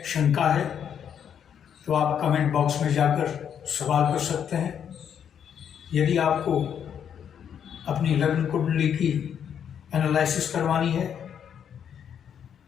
शंका है, तो आप कमेंट बॉक्स में जाकर सवाल कर सकते हैं। यदि आपको अपनी लग्न कुंडली की एनालिसिस करवानी है,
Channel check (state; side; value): quieter; right; 8.4 dB